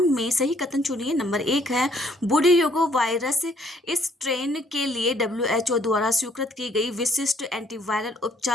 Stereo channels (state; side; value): normal; both; correlation 0.64